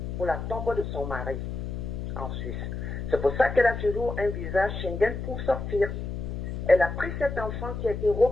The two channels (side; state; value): left; noise; hum, 5 dB below the sound